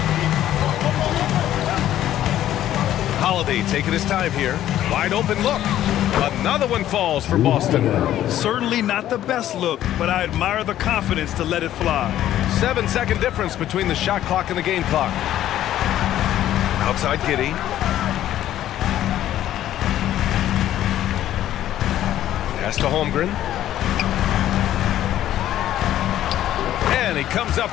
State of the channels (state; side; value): quieter; right; 12.4 dB